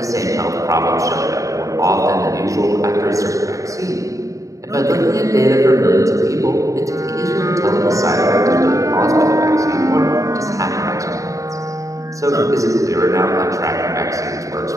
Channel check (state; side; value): late; left; 0.16 ms